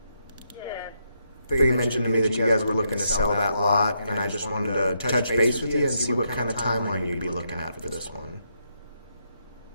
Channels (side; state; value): both; inverted; correlation -0.79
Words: Yes. They mentioned to me that you guys were looking to sell that lot, and I just wanted to touch base with you and see what kind of timeline you'd be looking at for this one.